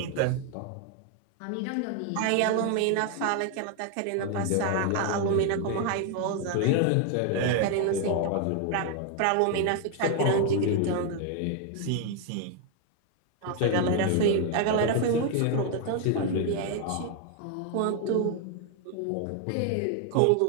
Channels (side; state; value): both; different; correlation 0.01